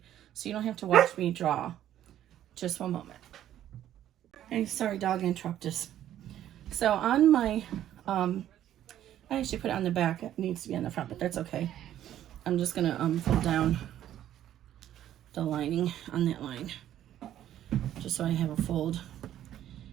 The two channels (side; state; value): left; quieter; 11.7 dB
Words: so you don't have to watch me draw. Just one moment. Hey, sorry, dog interrupted us. So on my, I actually put it on the back. It needs to be on the front, but that's okay. I'm just gonna fold down the lining on that line, just so I have a fold.